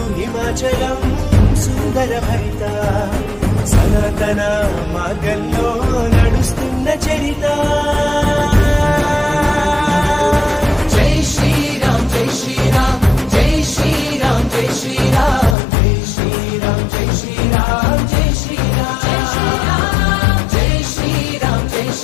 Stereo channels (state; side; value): drops out; right; at 15.6 s